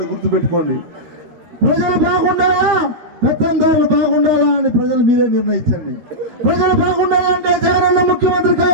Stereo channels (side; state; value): left; late; 13 ms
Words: గుర్తుపెట్టుకోండి, ప్రజలు బాగుండాలా పెత్తందారులు బాగుండాలా అని ప్రజలు మీరే నిర్ణయించండి. ప్రజలు బాగుండాలంటే జగనన్న ముఖ్యమంత్రి